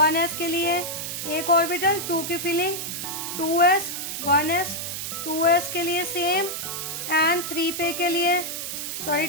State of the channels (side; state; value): right; noise; hiss, 5 dB below the sound